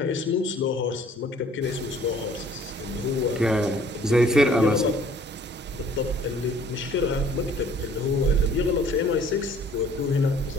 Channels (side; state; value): both; normal; correlation 0.56